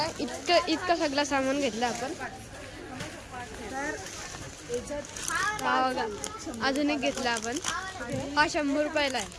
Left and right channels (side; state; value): both; identical; correlation 1.00